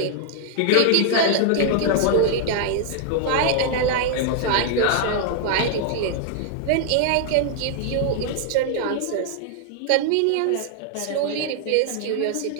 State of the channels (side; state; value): both; different; correlation 0.00